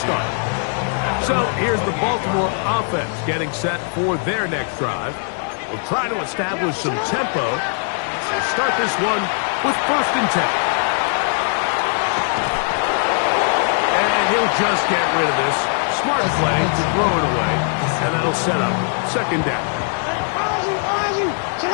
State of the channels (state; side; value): silent; right; 59 dB below the other